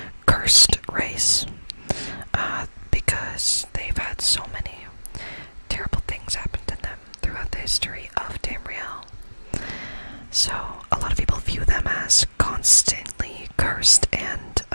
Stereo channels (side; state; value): both; inverted; correlation -1.00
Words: cursed race because they've had so many terrible things happen to them throughout the history of Tamriel. So a lot of people view them as constantly cursed, and